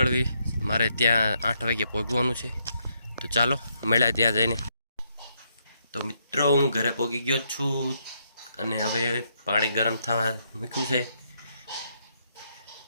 મારે ત્યાં 8 વાગે પહોંચવાનું છે। તો ચાલો મળ્યા ત્યાં જઈને। તો મિત્રો હું ઘરે પહોંચી ગયો છું અને હવે પાણી ગરમ થવા મૂક્યું છે।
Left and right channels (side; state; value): both; inverted; correlation -0.76